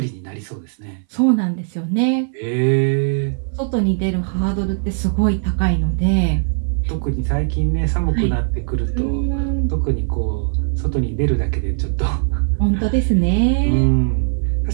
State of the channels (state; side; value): silent; left; 64 dB below the other